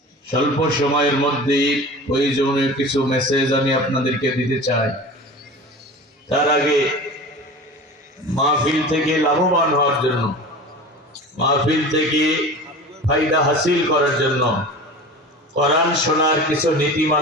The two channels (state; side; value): normal; both; correlation 0.35